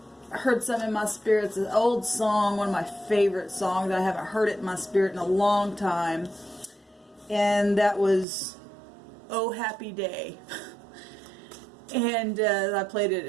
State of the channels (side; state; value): left; drops out; at 8.2 s